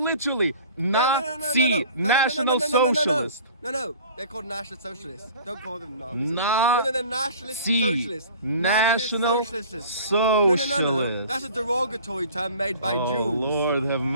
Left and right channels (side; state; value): both; inverted; correlation -0.46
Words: Nazi, No. National Socialist. No, they're called National Socialists. Don't call them Nazis. Nazi, They're Nationalist Socialists. National Socialists. Socialist. No. That's a derogatory term made by Oh, Jews. Lord have